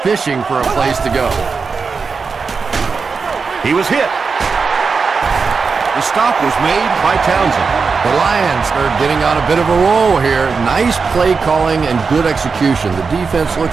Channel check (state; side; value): quieter; left; 5.0 dB